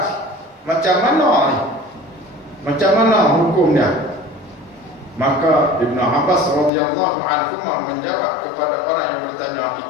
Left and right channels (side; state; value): right; drops out; at 6.7 s